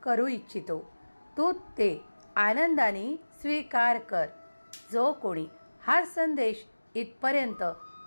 करू इच्छितो. तू ते आनंदाने स्वीकार कर. जो कोणी हा संदेश इथपर्यंत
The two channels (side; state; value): both; inverted; correlation -1.00